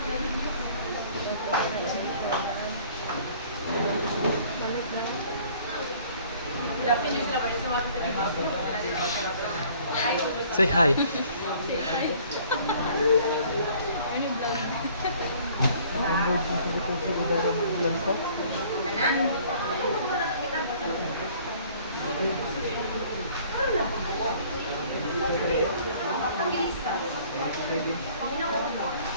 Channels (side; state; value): both; inverted; correlation -0.55